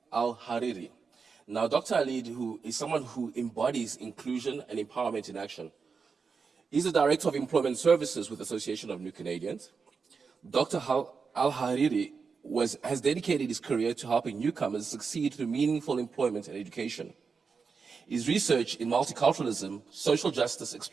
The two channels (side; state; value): left; quieter; 5.3 dB